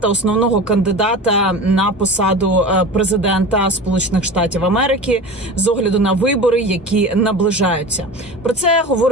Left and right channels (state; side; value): normal; both; correlation 0.33